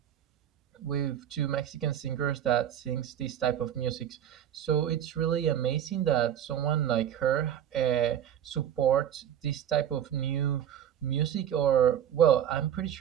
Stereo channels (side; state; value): left; quieter; 9.9 dB